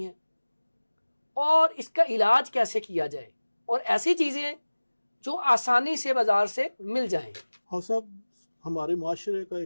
ہیں اور اس کا علاج کیسے کیا جائے، اور ایسی چیزیں جو آسانی سے بازار سے مل جائیں؟ ہاں صاحب، ہمارے معاشرے کا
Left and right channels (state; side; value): inverted; both; correlation -1.00